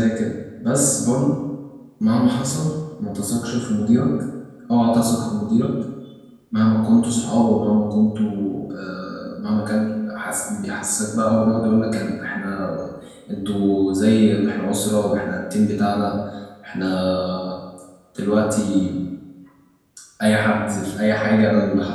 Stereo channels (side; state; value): both; identical; correlation 1.00